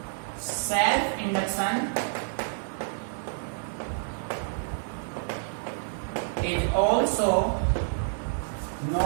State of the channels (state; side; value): silent; left; digital silence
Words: self induction is also